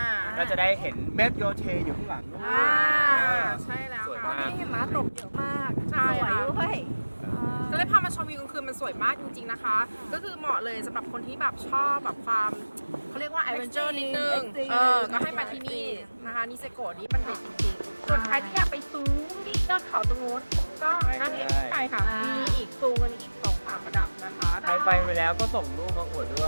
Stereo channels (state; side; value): inverted; both; correlation -1.00